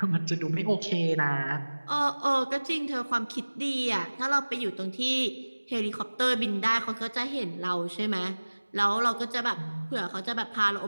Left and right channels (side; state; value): both; inverted; correlation -1.00